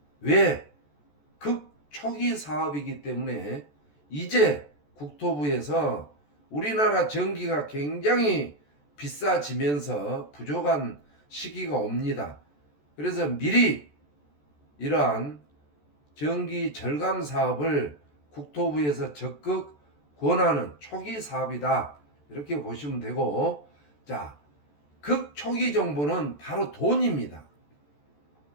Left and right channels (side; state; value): right; late; 14 ms